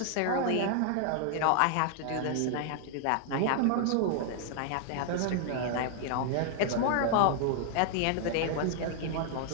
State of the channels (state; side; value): different; both; correlation -0.01